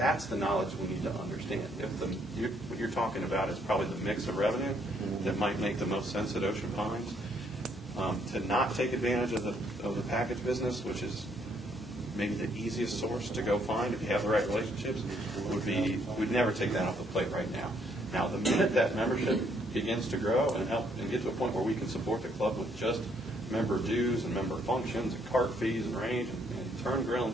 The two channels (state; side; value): normal; both; correlation 0.69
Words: the knowledge we need to understand. What you're talking about is probably the mix of revenue that might make the most sense at Ocean Pines. To not take advantage of the package business, which is maybe the easiest source to go find if you have the right relationships, we'd never take that off the plate right now. Now, the minute that membership begins to grow and get to a point where we can support the club with just member dues and member functions and cart fees and range and turn grill and